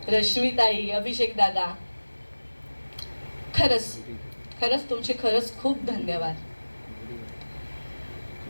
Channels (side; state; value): both; inverted; correlation -1.00